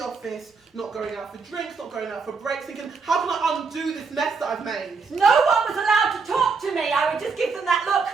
office, not going out for drinks, not going out for breaks, thinking, how can I undo this mess that I've made? No one was allowed to talk to me. I would just give them that look.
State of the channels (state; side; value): quieter; left; 4.8 dB